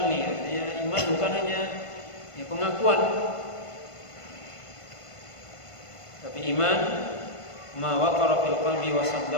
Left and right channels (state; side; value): late; right; 1.5 ms